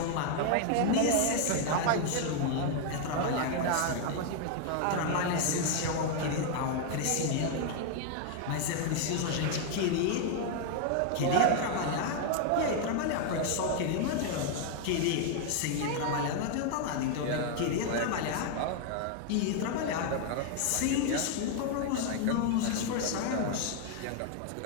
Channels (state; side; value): different; both; correlation 0.00